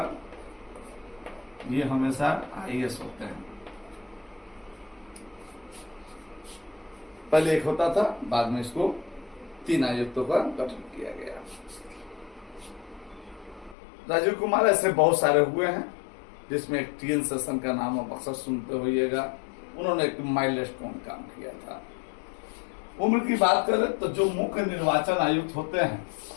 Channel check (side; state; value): right; drops out; at 13.8 s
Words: ये हमेशा IAS होते हैं। पहले एक होता था, बाद में इसको 3 आयुक्तों का गठन किया गया। राजीव कुमार ऐसे बहुत सारे हुए हैं, जिसमें एक TN सेशन का नाम आप अक्सर सुनते होइएगा। उन्होंने एक माइलस्टोन काम किया था। उम्र की बात करें तो जो मुख्य निर्वाचन आयुक्त होते हैं,